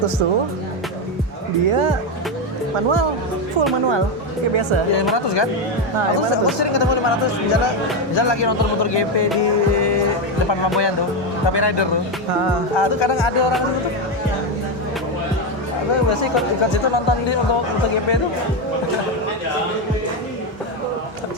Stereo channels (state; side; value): normal; both; correlation 0.09